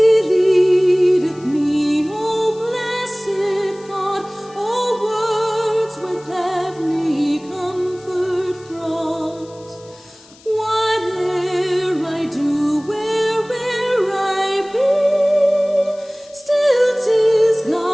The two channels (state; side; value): noise; left; hiss, 25 dB below the sound